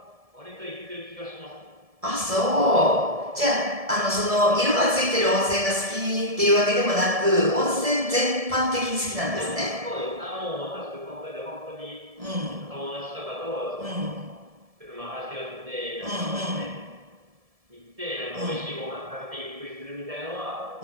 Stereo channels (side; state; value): left; late; 1.7 ms